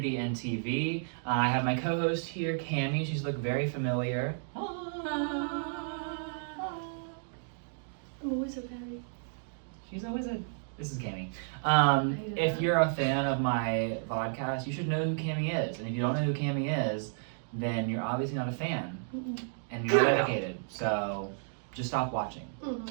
and TV. I have my co-host here, Cammie. She's looked very familiar. I'm always so happy. She's always a... This is Cammie. hate If that. you're a fan of my podcast, you should know who Cammie is. And if you don't know who Cammie is, then you're obviously not a fan. And you're not dedicated. So just stop watching.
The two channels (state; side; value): silent; left; digital silence